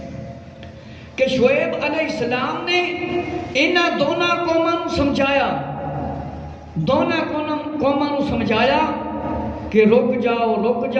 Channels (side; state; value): both; identical; correlation 1.00